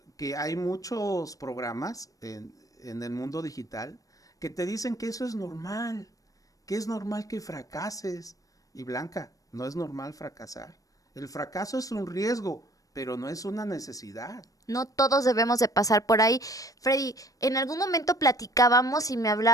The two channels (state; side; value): late; right; 0.17 ms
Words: que hay muchos programas en el mundo digital que te dicen que eso es normal, que es normal que fracases. Y Blanca, no es normal fracasar. El fracaso es un riesgo, pero no es una necesidad. No todos debemos de pasar por ahí. Freddy, en algún momento platicábamos y me